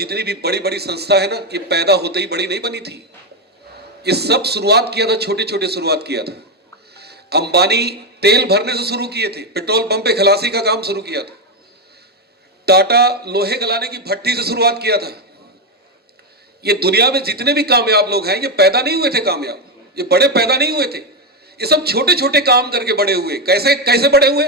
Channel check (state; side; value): normal; both; correlation 0.07